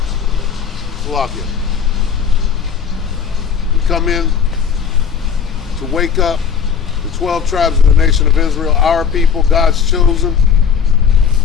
Slovakia. We come in to wake up the 12 tribes of the nation of Israel, our people, God's chosen,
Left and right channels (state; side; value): quieter; right; 6.9 dB